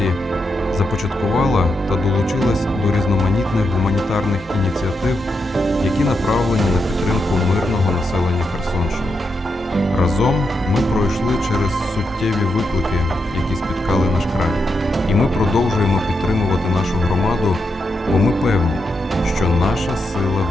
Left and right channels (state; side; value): normal; both; correlation 0.84